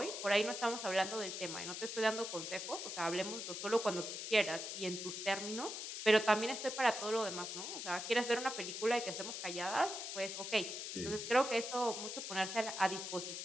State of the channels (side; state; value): left; noise; hiss, 6 dB below the sound